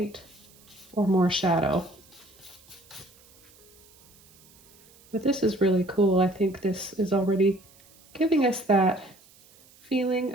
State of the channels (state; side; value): noise; right; hiss, 27 dB below the sound